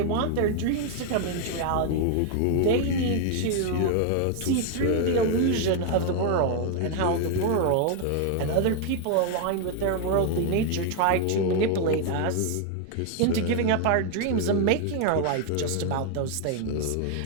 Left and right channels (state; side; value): different; both; correlation 0.01